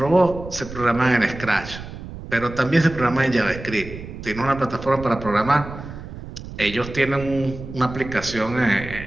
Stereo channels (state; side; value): noise; right; rumble, 12 dB below the sound